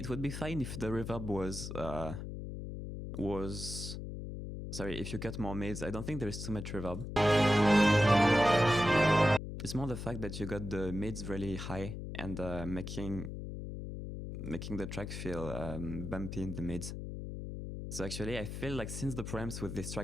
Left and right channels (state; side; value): noise; left; hum, 7 dB below the sound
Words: would be fine if the reverb was sorry, if you cut more mids. I don't think there is too much reverb. It's more the fact that you got the mids really high and making the track feel bumpy in the mids. So actually, I feel like since the preamps with this